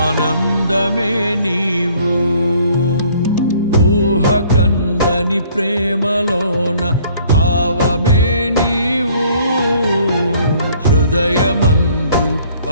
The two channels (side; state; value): both; inverted; correlation -0.58